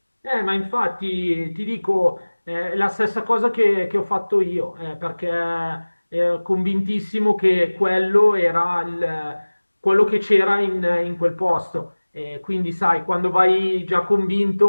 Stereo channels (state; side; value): inverted; both; correlation -1.00